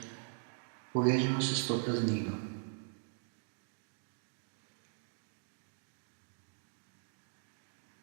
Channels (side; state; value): left; silent; digital silence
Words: povežemo se s to praznino.